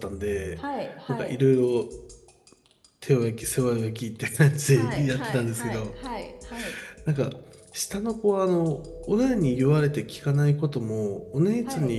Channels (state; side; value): identical; both; correlation 1.00